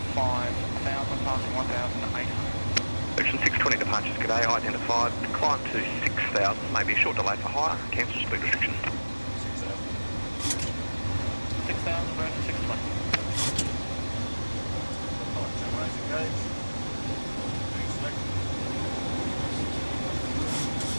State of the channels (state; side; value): inverted; both; correlation -1.00